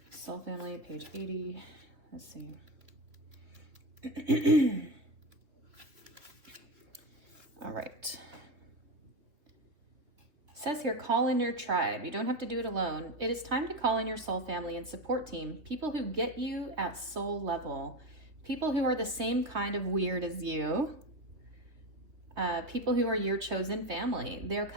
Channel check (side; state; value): left; late; 3.2 ms